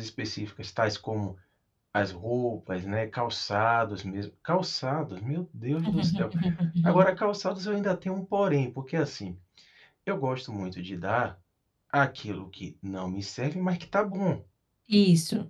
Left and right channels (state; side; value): identical; both; correlation 1.00